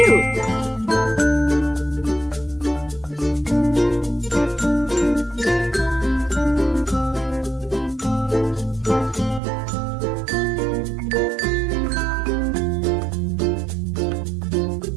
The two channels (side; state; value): left; drops out; at 9.4 s